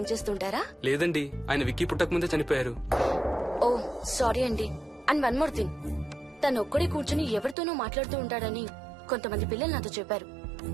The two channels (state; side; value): drops out; left; at 7.6 s